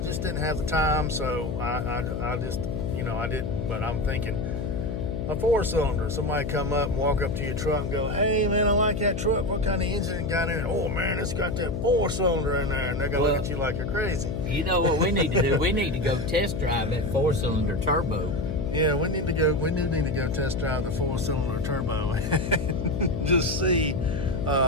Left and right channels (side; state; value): left; noise; hum, 4 dB below the sound